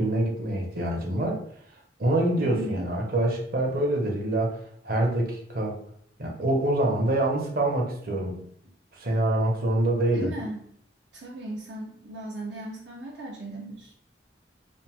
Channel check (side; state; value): both; normal; correlation 0.55